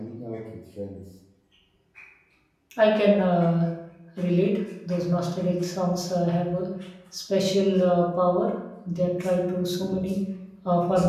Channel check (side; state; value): both; identical; correlation 1.00